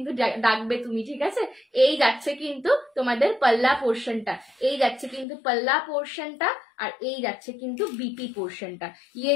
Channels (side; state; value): right; drops out; at 5.2 s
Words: ডাকবে তুমি, ঠিক আছে? এই যাচ্ছে কিন্তু তোমাদের পাল্লা পোর্শনটা, এই যাচ্ছে কিন্তু পাল্লা পোর্শনটা, আর এই যাচ্ছে কিন্তু বিপি পোর্শনটা। ইয়ে